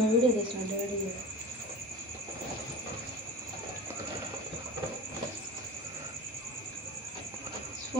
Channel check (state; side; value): normal; both; correlation 0.34